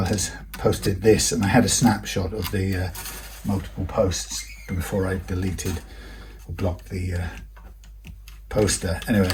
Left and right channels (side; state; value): both; identical; correlation 1.00